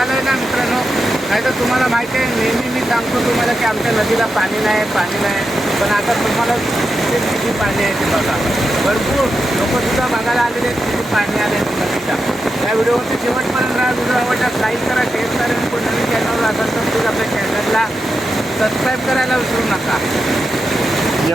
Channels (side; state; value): both; normal; correlation 0.88